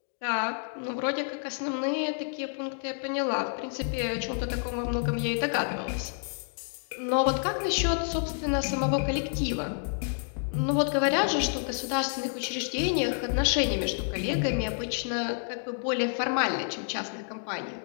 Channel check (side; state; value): right; silent; 58 dB below the other